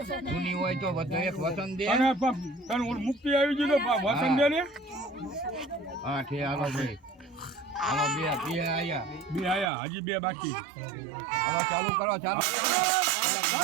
જૂની હોય તો બધો એક વસન દે. મુક્તિ આવી ગઈ તો વસન દે ને. હા ઠે હાલો ભાઈ હાલો બે આયા હજી બે બાકી. હાલો ચાલુ કરો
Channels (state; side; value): drops out; left; at 9.7 s